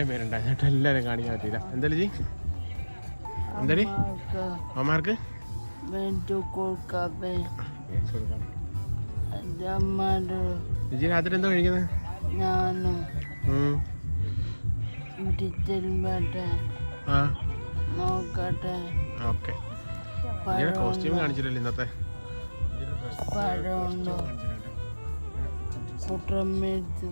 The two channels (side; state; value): both; inverted; correlation -1.00